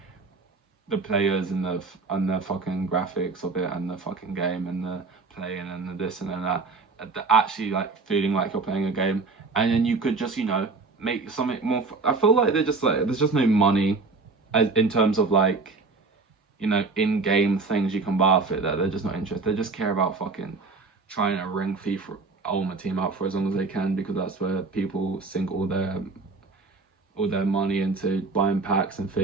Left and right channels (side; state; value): left; quieter; 4.0 dB